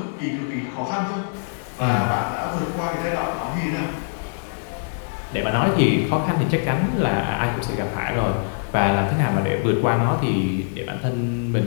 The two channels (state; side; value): silent; right; digital silence